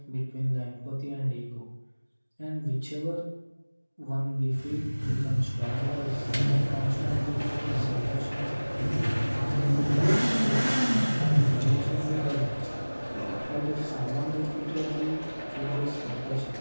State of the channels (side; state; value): both; inverted; correlation -1.00